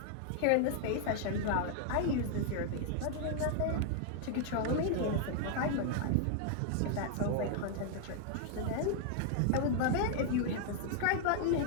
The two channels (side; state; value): both; different; correlation 0.00